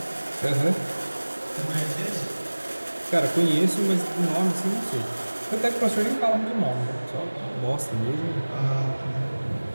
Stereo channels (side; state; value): both; inverted; correlation -1.00